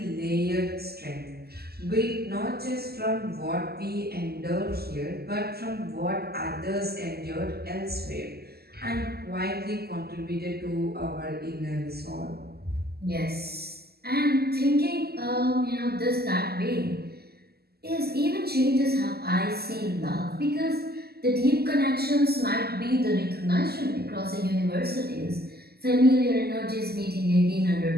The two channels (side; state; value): left; late; 0.46 ms